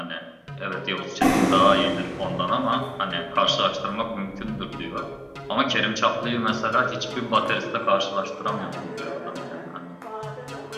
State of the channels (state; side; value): identical; both; correlation 1.00